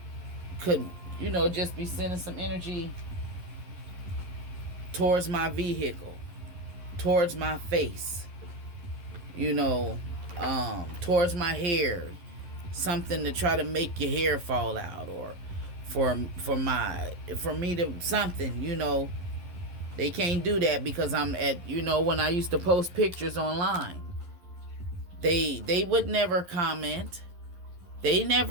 could, just be sending some energy towards my vehicle, towards my face, towards my hair, something to try to make your hair fall out, or for me to something, they can't do that because I'm at, when I used to post pictures online, they would never comment. They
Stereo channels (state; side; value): late; left; 11 ms